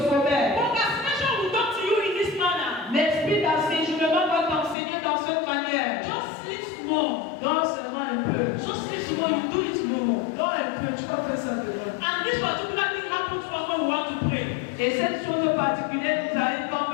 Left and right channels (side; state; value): right; drops out; at 4.8 s